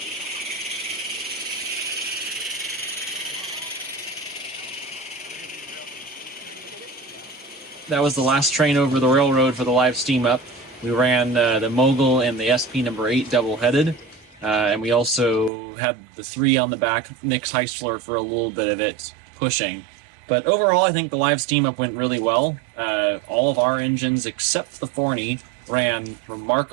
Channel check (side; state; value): left; drops out; at 15.5 s